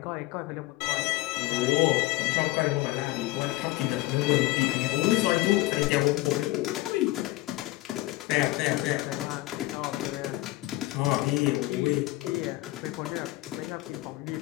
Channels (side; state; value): right; quieter; 18.7 dB